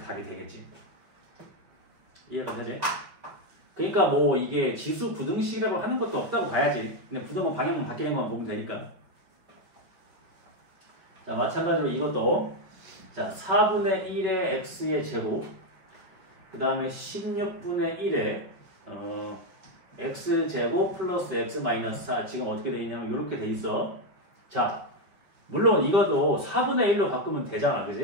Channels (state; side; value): late; left; 5.3 ms